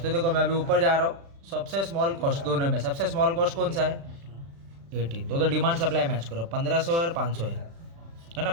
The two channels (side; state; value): left; late; 36 ms